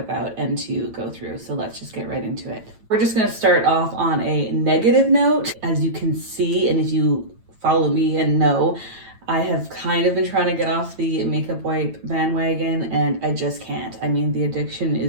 and to go through. So let's just get right into it. We're just going to start off on a negative note. As you can see, and if you follow me and know, I have kind of been trying to get off the makeup wipe bandwagon and I just can't. I mean, the addiction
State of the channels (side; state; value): left; late; 9.0 ms